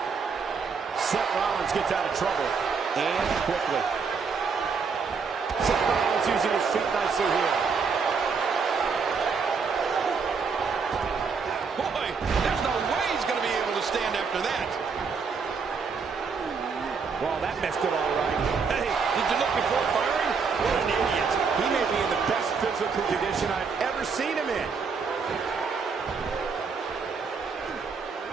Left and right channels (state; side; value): quieter; left; 5.4 dB